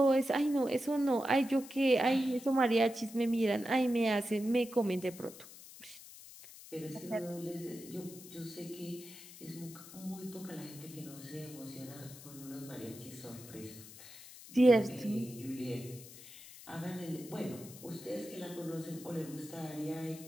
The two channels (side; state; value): left; noise; hiss, 17 dB below the sound